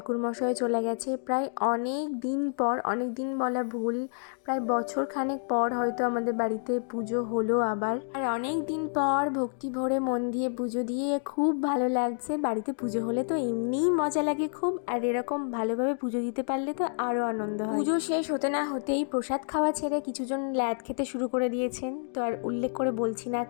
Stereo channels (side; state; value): right; silent; digital silence